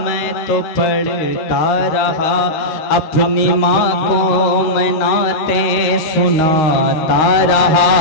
मैं तो पढ़ता रहा, अपनी माँ को मैं नातें सुनाता रहा,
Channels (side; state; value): right; late; 13 ms